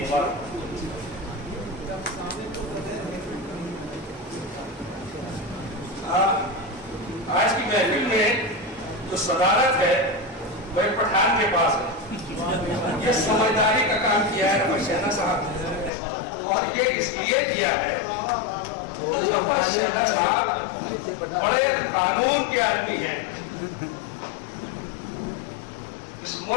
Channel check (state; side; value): drops out; right; at 15.9 s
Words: مبارک. آج کی محفل میں جو صدارت ہے وہ ایک پٹھان کے پاس ہے. یہ سمجھداری کا کام کیا ہے رفعت شہزاد صاحب نے، اور یہ اس لیے کیا ہے رفعت شہزاد صاحب بڑے قانون کے آدمی ہیں. اس